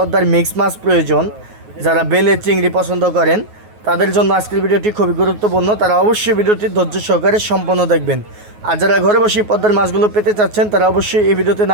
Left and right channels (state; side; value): late; left; 9.4 ms